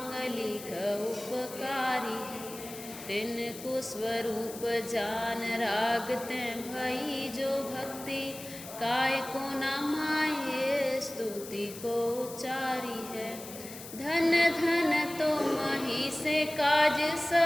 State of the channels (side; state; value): left; noise; hiss, 13 dB below the sound